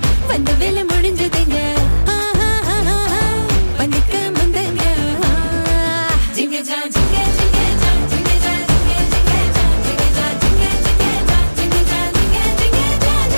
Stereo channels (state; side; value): inverted; both; correlation -1.00